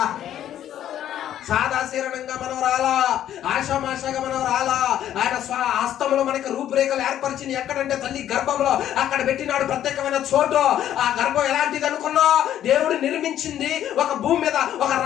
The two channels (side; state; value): right; quieter; 11.2 dB